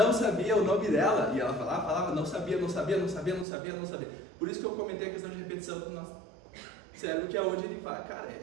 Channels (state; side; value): drops out; left; at 3.5 s